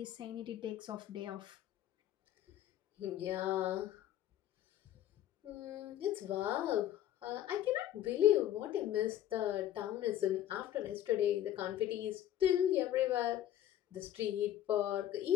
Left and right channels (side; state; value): right; quieter; 12.0 dB